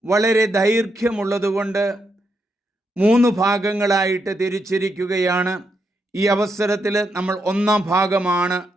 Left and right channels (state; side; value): normal; both; correlation 0.81